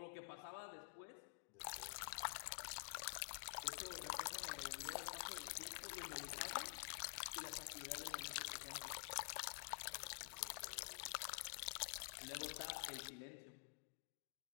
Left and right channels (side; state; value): right; silent; digital silence